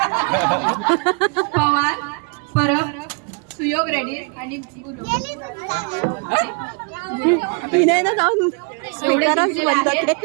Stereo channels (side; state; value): left; quieter; 33.9 dB